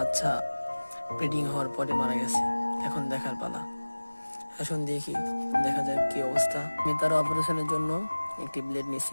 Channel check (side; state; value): both; inverted; correlation -1.00